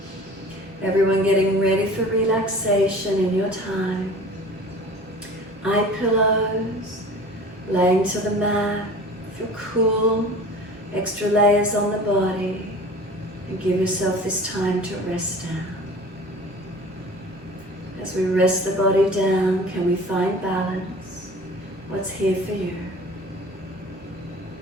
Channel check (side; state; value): both; normal; correlation 0.42